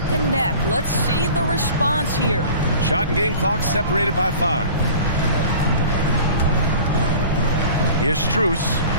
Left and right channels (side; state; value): both; inverted; correlation -0.42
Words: and neck. Let's see the response here. Shot and game clock separated by 5. Here's Strus.